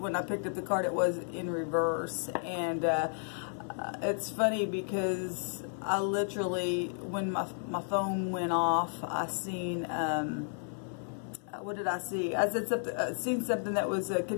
I picked up the card, it was in reverse. And it's funny because I literally, when my phone went off, I seen what did I see? I said something, seen something that was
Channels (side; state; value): right; silent; 56 dB below the other